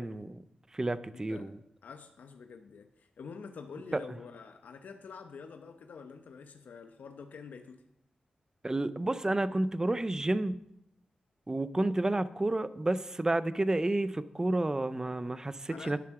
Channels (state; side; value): normal; both; correlation 0.97